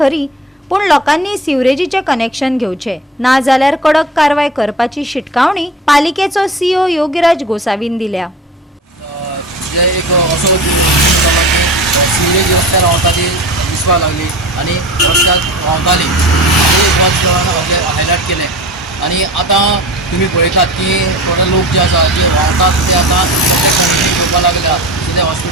पण लोकांनी सिवरेजीचे कनेक्शन घेवचे ना जाल्यार कडक कारवाय करपाची शिटकावणी पालिकेचो CEO योगीराज गोसावीन दिल्या। एक असो सिवरेज रस्त्यार रावता ती दिसपाक लागली आनी रस्त्याक रावताली हायलायट केलें। आनी आतां तुमी पळयतात की थोडे लोक जे आसा जे रावतात ते आतां कनेक्शन घेवपाक लागल्या, ते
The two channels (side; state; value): both; normal; correlation 0.36